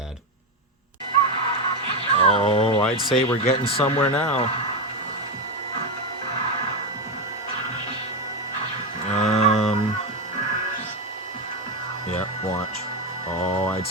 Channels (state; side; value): normal; both; correlation 0.11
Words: Oh, I'd say we're getting somewhere now. Yeah, watch. Oh, I'd